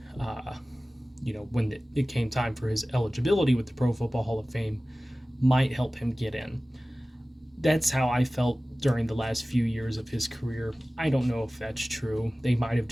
when it came time for his eligibility with the Pro Football Hall of Fame, might help him get in. That's how I felt during the last few years of his career. I don't know if that's true. They might have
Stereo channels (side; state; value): both; normal; correlation 0.97